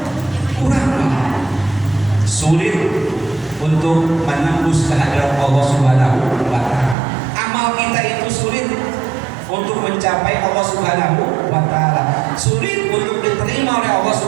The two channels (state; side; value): drops out; left; at 7.0 s